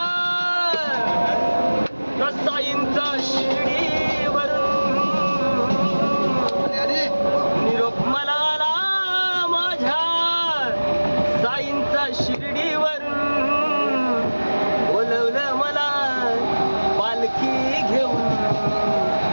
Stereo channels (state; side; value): inverted; both; correlation -1.00